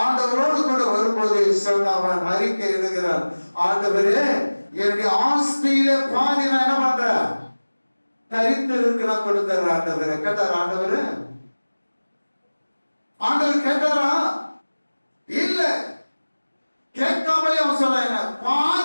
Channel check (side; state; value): both; inverted; correlation -1.00